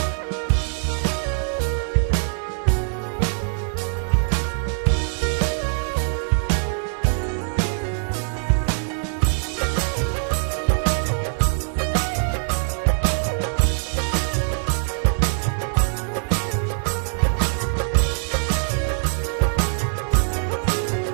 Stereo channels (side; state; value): left; silent; digital silence